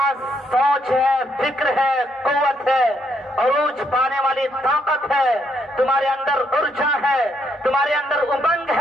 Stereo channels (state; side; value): normal; both; correlation 0.74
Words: سوچ ہے، فکر ہے، قوت ہے، عروج پانے والی طاقت ہے، تمہارے اندر ارجا ہے، تمہارے اندر امنگ